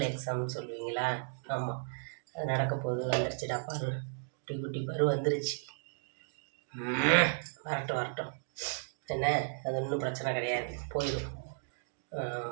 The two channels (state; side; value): silent; left; digital silence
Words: எக்ஸாம்னு சொல்லுவீங்களா? ஆமாம், அது நடக்க போகுது. வந்துருச்சுடா பரு, குட்டி குட்டி பரு வந்துருச்சு. வரட்டும் என்ன, அது ஒன்றும் பிரச்சனை கிடையாது, போயிடும்.